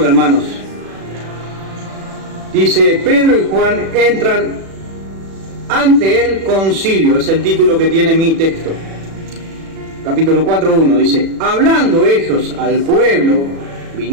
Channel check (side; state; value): left; late; 36 ms